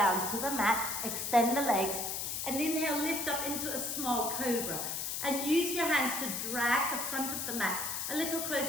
to the mat, extend the legs, and inhale, lift up into a small cobra. And use your hands to drag the front of the mat a little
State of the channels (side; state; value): left; noise; hiss, 3 dB below the sound